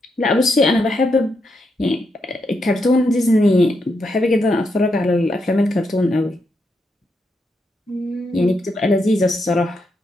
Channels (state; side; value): normal; both; correlation 0.82